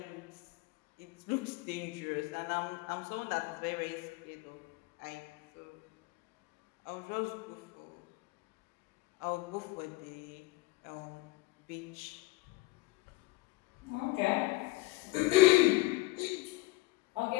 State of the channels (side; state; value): right; quieter; 21.2 dB